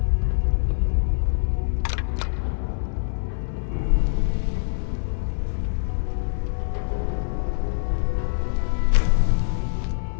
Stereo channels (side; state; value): right; silent; digital silence